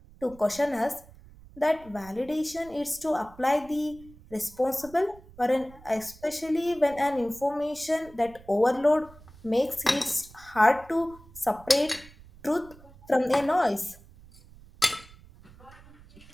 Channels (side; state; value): right; noise; rumble, 22 dB below the sound